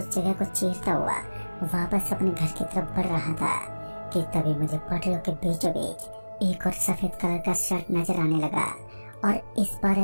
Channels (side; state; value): both; inverted; correlation -1.00